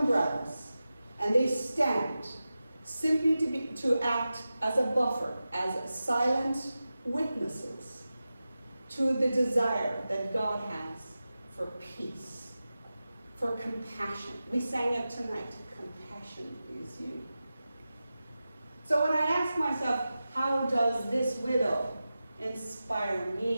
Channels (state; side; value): inverted; both; correlation -0.94